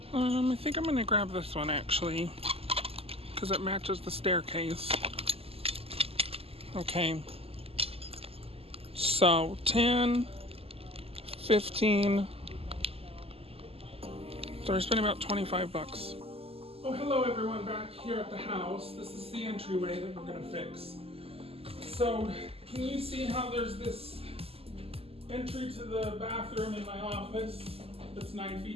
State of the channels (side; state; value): left; late; 0.28 ms